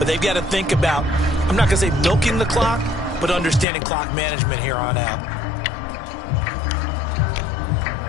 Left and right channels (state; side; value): drops out; right; at 3.7 s